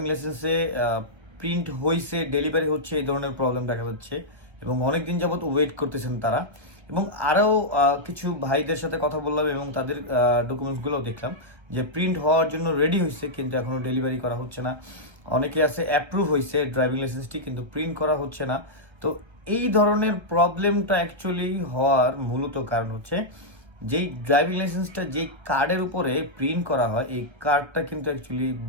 লাইসেন্সে প্রিন্ট হয়েছে, ডেলিভারি হচ্ছে, এই ধরনের প্রবলেম দেখা যাচ্ছে এবং অনেক দিন যাবত ওয়েট করতেছেন তারা। এবং আরও কিছু ভাইদের সাথে কথা বললাম এবং তাদের ডকুমেন্টসগুলো দেখলাম যে প্রিন্ট হওয়ার জন্য রেডি হয়েছে কিন্তু এখনও ডেলিভারি করা হচ্ছে না। অনেকে আছে অ্যাপ্রুভ হয়েছে ড্রাইভিং লাইসেন্সটি কিন্তু প্রিন্ট করা হচ্ছে না। তো এই ধরনের প্রবলেমটা অ্যাকচুয়ালি হওয়ার মূলত কারণ হচ্ছে যেই ড্রাইভিং লাইসেন্সটা যেই কার্ডের উপরে প্রিন্ট করা হয়, এই কার্ডটা কিন্তু অ্যাকচুয়ালি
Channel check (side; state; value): left; late; 1.5 ms